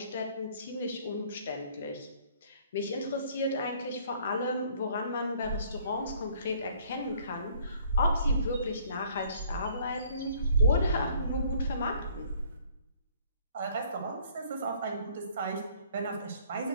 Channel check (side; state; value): both; inverted; correlation -0.59